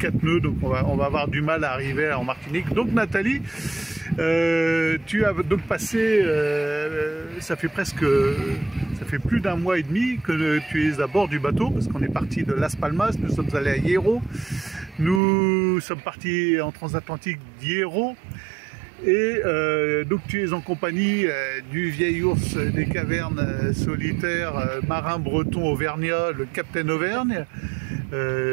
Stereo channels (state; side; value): drops out; left; at 15.2 s